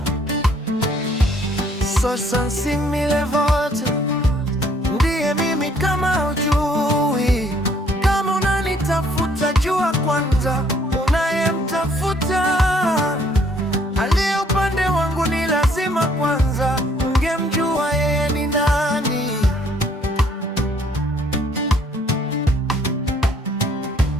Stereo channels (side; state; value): both; normal; correlation 0.63